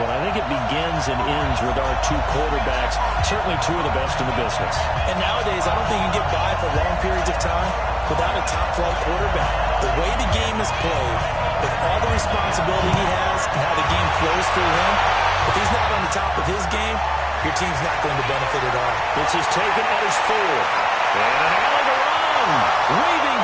one. I think it begins and ends with our two quarterbacks, certainly two of the best in the business. And nowadays, I don't think you can get by for long periods of time without a top-flight quarterback. The way the game is played, with all the responsibility he has and how the game flows through him, if he's not on the top of his game, your team's not going to benefit at all. This is taken at his 4. And an alley to run. Weaving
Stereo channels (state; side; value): identical; both; correlation 1.00